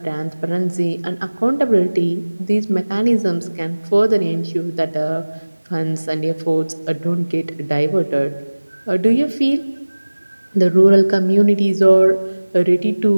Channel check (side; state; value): both; inverted; correlation -1.00